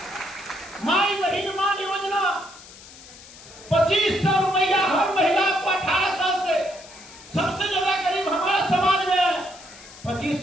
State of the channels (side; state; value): left; noise; hiss, 19 dB below the sound